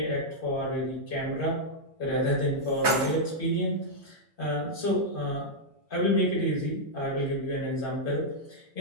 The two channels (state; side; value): normal; both; correlation -0.05